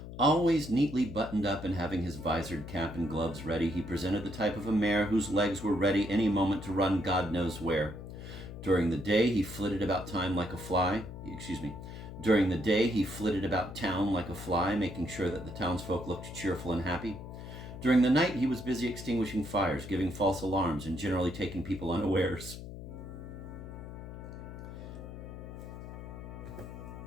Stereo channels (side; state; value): left; noise; hum, 11 dB below the sound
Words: Always neatly buttoned up and having his visored cap and gloves ready, he presented the type of a mare whose legs were ready any moment to run God knows where. During the day, he flitted about town like a fly, making sure that the townsfolk looked cheerful and happy. During the night, he was busy extinguishing fires, giving false alarms, and generally taking people unawares.